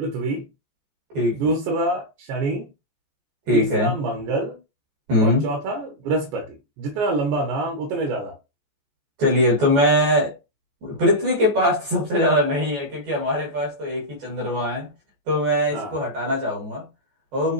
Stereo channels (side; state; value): left; late; 14 ms